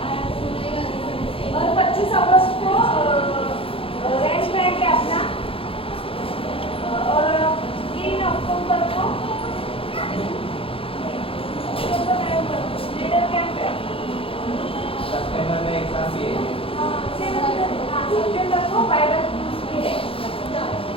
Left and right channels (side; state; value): right; late; 0.27 ms